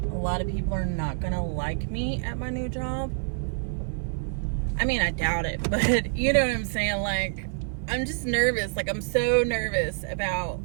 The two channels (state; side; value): silent; left; 60 dB below the other